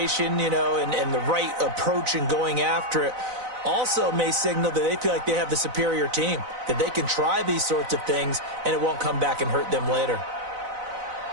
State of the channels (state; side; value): late; left; 4.0 ms